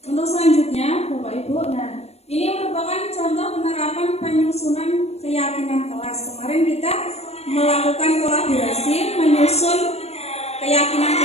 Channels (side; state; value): right; late; 0.31 ms